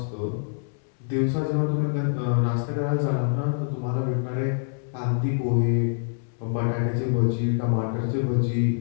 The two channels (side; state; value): right; silent; 61 dB below the other